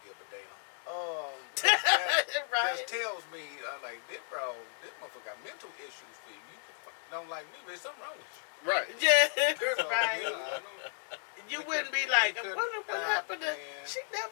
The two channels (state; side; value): silent; right; digital silence